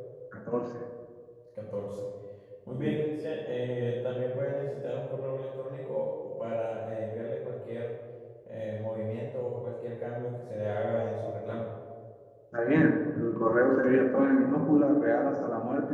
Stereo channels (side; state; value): both; identical; correlation 1.00